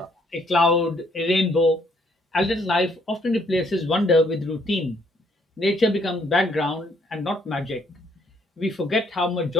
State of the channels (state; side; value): normal; both; correlation 0.67